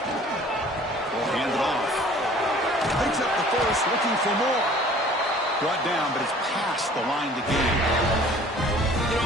We'll hand it off. Picks up the first, looking for more. Brought down, but it's past the line to gain. You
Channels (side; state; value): both; normal; correlation 0.51